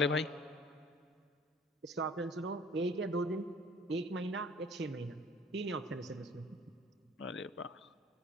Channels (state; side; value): normal; both; correlation 0.51